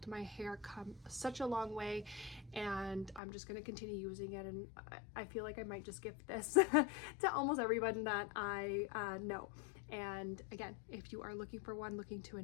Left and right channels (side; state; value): right; drops out; at 3.2 s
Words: my hair come such a long way, and I'm just going to continue using it. And I feel like I might just gift this to almost everyone that I know. And again, if you are looking for one, looking to